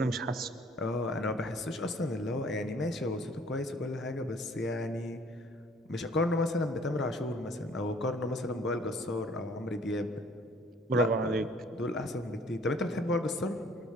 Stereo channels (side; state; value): both; normal; correlation 0.56